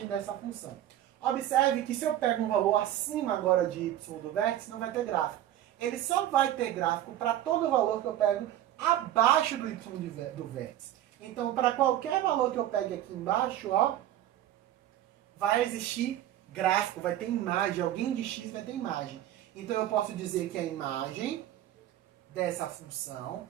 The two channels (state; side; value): quieter; left; 12.6 dB